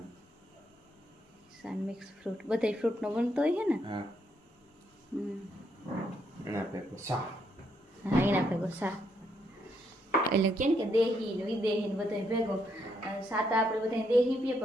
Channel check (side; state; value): both; normal; correlation 0.75